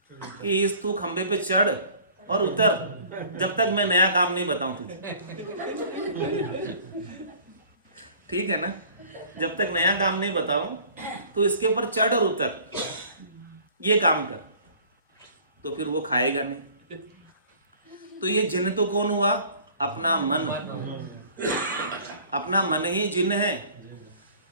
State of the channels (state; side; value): inverted; both; correlation -0.50